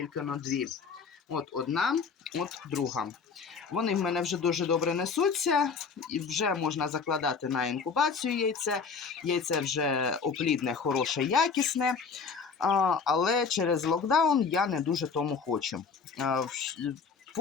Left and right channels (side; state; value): right; quieter; 5.4 dB